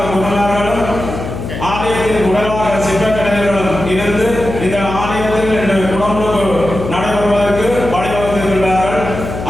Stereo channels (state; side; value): noise; left; hum, 7 dB below the sound